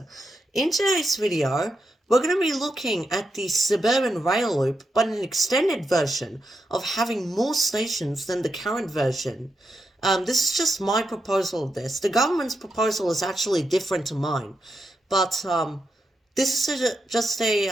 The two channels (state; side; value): normal; both; correlation 0.85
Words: In today's video, we're going to be looking at the Suburban Rail Loop, but an extended version of having more stations than the current version. This is just my proposal of this. The government's proposal is actually different to mine, but this is just